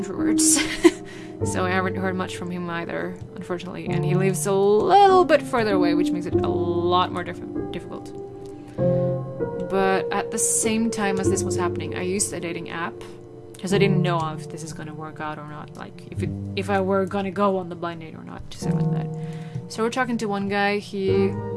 So I haven't heard much from him either, unfortunately. And he lives a little bit further away, which makes it a lot more difficult. But at the same time as this was happening, I used a dating app because I didn't know if this is gonna work out or not. Like if I were gonna go on the blind date or not, to say it like that. So we're talking to one guy. He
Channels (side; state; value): both; identical; correlation 1.00